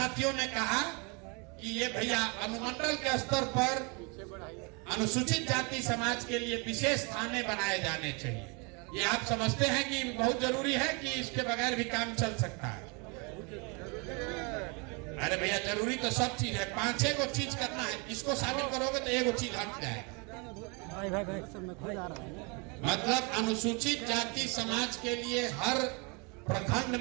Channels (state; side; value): quieter; left; 31.7 dB